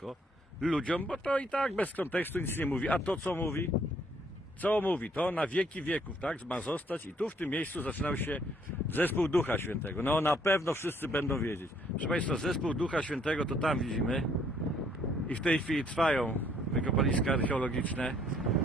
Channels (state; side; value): normal; both; correlation 0.65